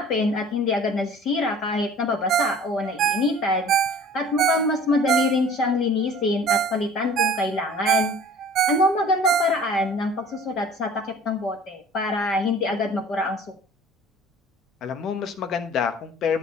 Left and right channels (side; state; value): both; normal; correlation 0.47